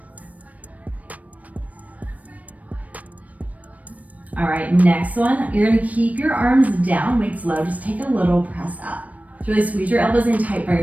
All right, next one. You're gonna keep your arms down, weights low. Just take a little press up. So really squeeze your elbows in tight by your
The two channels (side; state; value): left; late; 0.070 ms